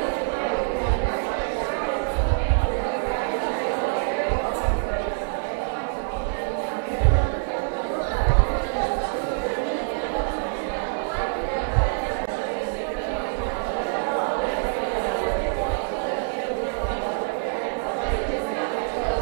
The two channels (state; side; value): silent; left; 61 dB below the other